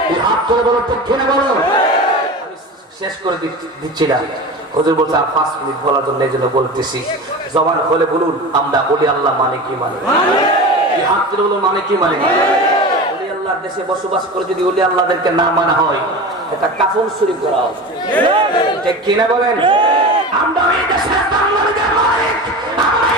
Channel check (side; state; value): both; normal; correlation 0.30